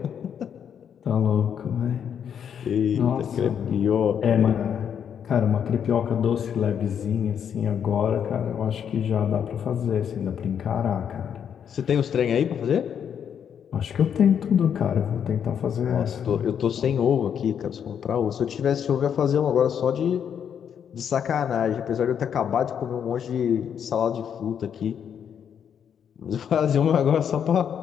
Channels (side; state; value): right; quieter; 8.2 dB